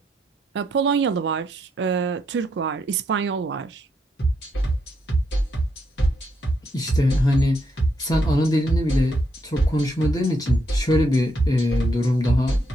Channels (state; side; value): normal; both; correlation 0.77